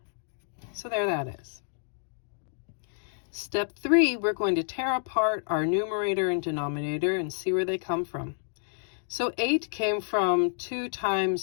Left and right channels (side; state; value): right; silent; digital silence